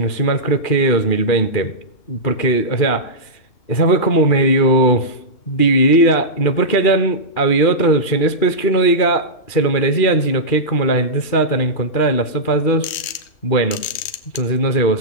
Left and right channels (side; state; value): right; late; 3.2 ms